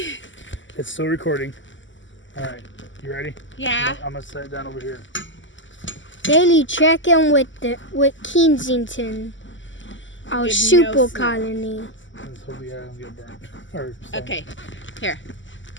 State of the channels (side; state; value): right; late; 0.55 ms